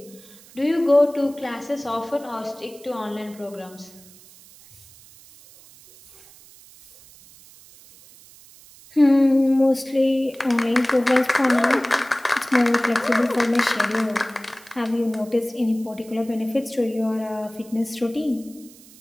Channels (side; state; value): right; noise; hiss, 23 dB below the sound